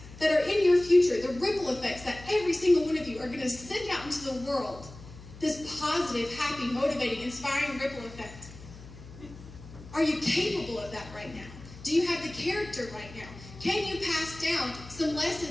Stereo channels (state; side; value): noise; left; hum, 17 dB below the sound